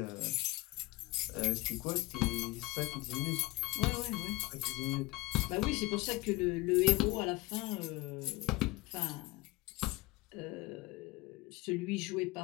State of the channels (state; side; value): quieter; right; 21.1 dB